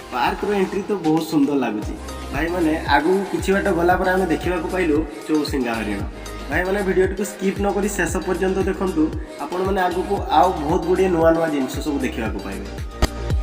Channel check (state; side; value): identical; both; correlation 1.00